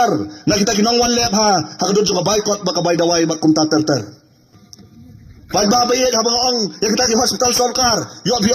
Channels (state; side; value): identical; both; correlation 1.00